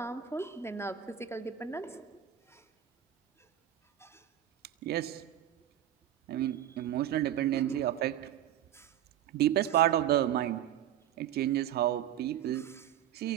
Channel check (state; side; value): quieter; left; 11.3 dB